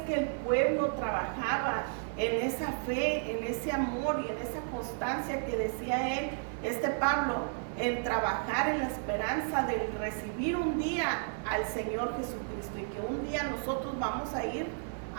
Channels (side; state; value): left; silent; digital silence